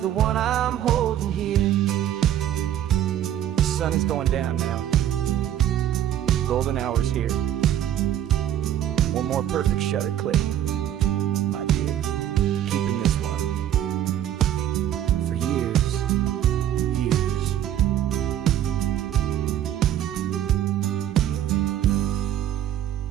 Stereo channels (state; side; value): quieter; left; 11.2 dB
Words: one I'm holding here. The sun is going down now. Golden hour's here. One more perfect shutter click, my dear. Keeping this one for years, years.